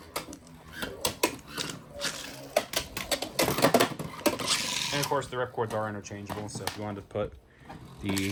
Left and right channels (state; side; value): identical; both; correlation 1.00